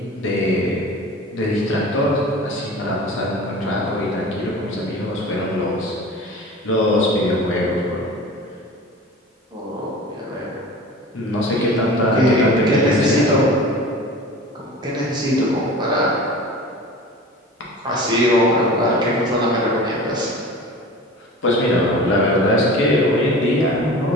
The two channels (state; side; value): normal; both; correlation 0.38